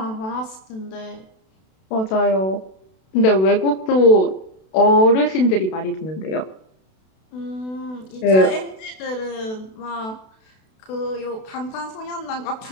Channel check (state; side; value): late; right; 32 ms